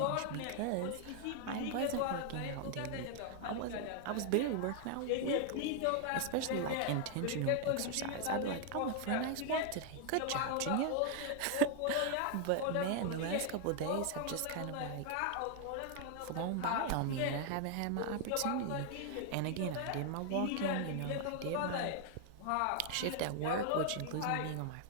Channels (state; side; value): different; both; correlation 0.00